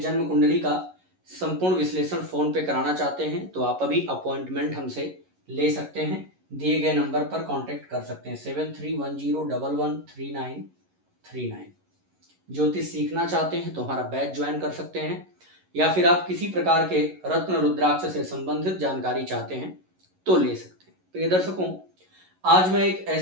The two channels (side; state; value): left; late; 11 ms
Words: कुंडली का संपूर्ण विश्लेषण फ़ोन पे कराना चाहते हैं तो आप अभी अपॉइंटमेंट हमसे ले सकते हैं। दिए गए नंबर पर कांटेक्ट कर सकते हैं 7310113939। ज्योतिष सीखना चाहते हैं तो हमारा बैच ज्वाइन कर सकते हैं, या फिर आप किसी प्रकार के रत्न रुद्राक्ष से संबंधित जानकारी चाहते हैं तो ले सकते हैं। प्रिय दर्शकों, आज मैं एक